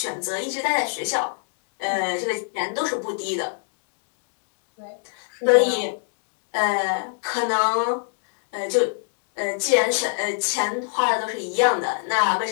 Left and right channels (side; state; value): right; silent; digital silence